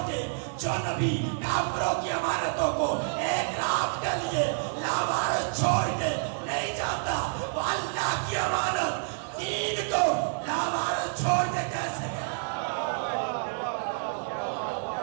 کے، جو نبی کافروں کی امانتوں کو ایک رات کے لیے لاوارث چھوڑ کے نہیں جاتا، وہ اللہ کی امانت دین کو لاوارث چھوڑ کے کیسے گیا؟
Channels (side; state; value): left; silent; digital silence